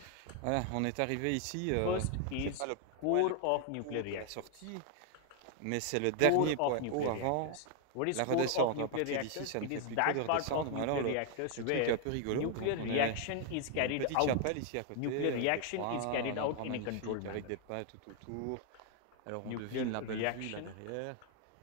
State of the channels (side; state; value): both; different; correlation 0.00